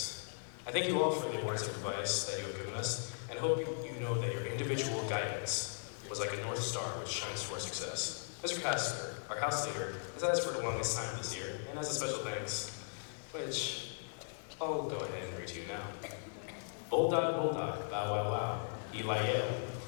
I thank you all for the words of advice that you have given us, and hope you know that your individual guidance was like a North Star which shines to our success. Mr. Casper, our house leader, has had us for the longest time this year, and as a special thanks, which I'll go ahead and read to you now. Bulldog, bulldog, bow wow wow, Eli Yale.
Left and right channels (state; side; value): silent; right; digital silence